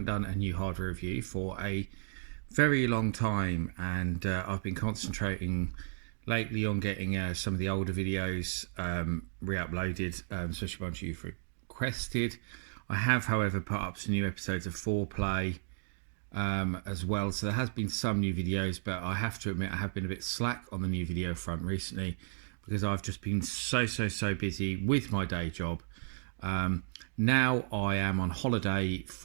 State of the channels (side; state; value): left; silent; digital silence